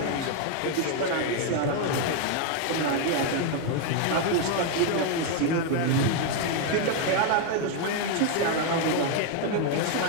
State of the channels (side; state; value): both; different; correlation 0.01